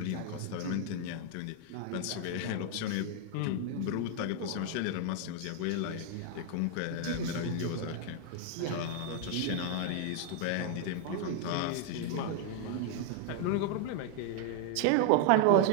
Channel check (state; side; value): different; both; correlation 0.00